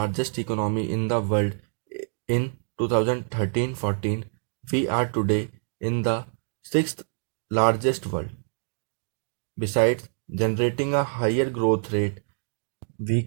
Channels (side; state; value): left; silent; digital silence